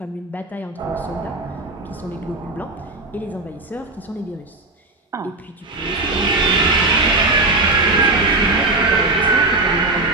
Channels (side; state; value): left; quieter; 3.1 dB